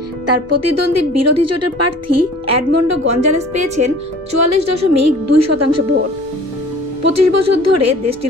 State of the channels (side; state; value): both; normal; correlation 0.47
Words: তার প্রতিদ্বন্দ্বী বিরোধী জোটের প্রার্থী এডমন্ডো গঞ্জালেস পেয়েছেন ৪৪.২% ভোট। ২৫ বছর ধরে